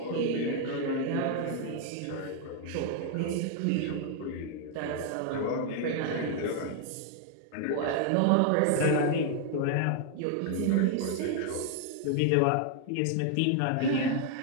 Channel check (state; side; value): different; both; correlation 0.00